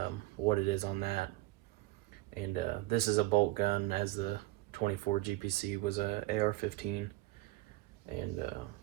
what it is on that. And this is a bolt gun, as the 24 GPC was a AR-15, and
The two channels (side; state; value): left; quieter; 18.3 dB